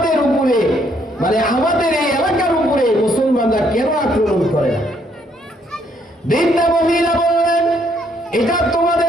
উপরে, মানে আমাদের এই এলাকার উপরে মুসলমানরা কেন আক্রমণ করে না? বৃদ্ধা মহিলা বললেন, এটা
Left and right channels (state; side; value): normal; both; correlation 0.69